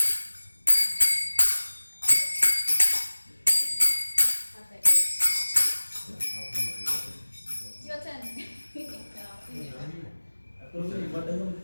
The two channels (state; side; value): inverted; both; correlation -1.00